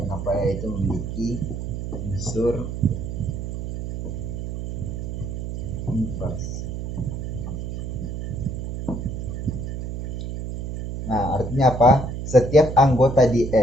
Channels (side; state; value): right; noise; hum, 5 dB below the sound